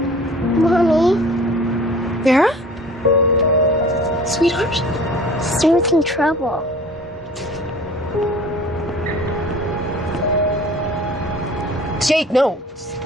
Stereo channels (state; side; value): normal; both; correlation 0.45